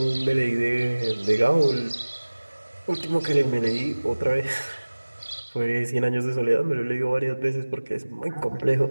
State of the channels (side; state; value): both; inverted; correlation -1.00